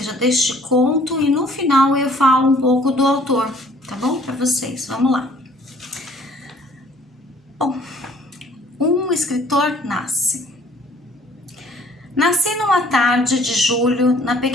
deste conto, e no final eu falo um pouco do autor, tá bom? Para vocês, vamos lá. Bom, um escritor nasce. Nasci numa tarde de julho, na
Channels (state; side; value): normal; both; correlation 0.57